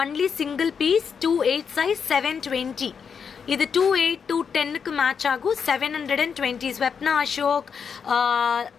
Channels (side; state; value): right; quieter; 6.5 dB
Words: Only single piece. 28 size 720. இது 28 210க்கு மேட்ச் ஆகும். 720. ஸ்வப்னா அசோக்,